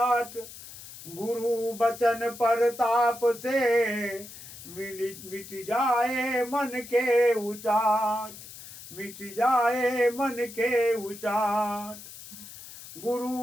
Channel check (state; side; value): noise; left; hiss, 15 dB below the sound